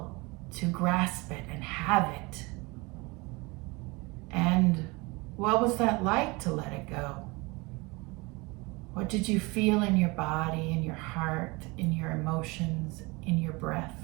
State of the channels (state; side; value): quieter; left; 25.5 dB